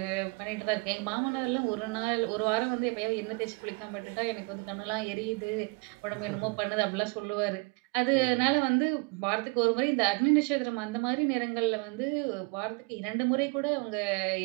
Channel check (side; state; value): left; quieter; 31.6 dB